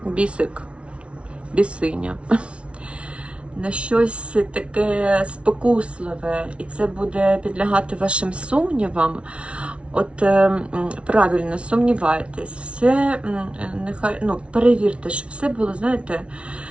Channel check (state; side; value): late; left; 0.060 ms